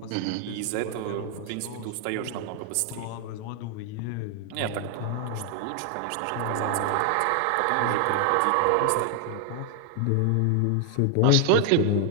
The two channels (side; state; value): both; different; correlation 0.00